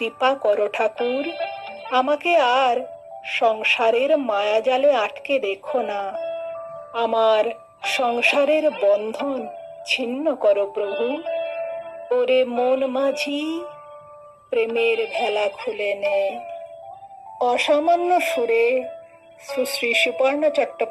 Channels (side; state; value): both; identical; correlation 1.00